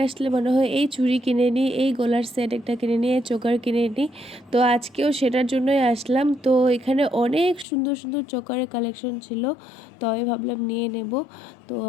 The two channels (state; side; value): drops out; right; at 7.7 s